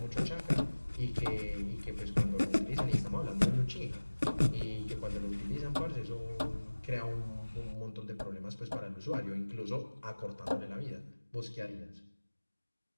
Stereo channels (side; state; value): both; inverted; correlation -1.00